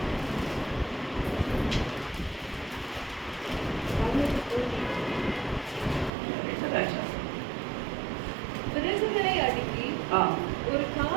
விறகுகளை அடுக்கி ஒரு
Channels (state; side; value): drops out; left; at 6.1 s